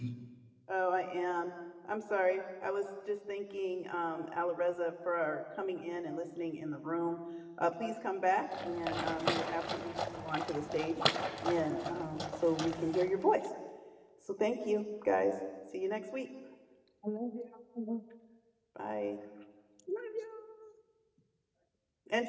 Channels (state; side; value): identical; both; correlation 1.00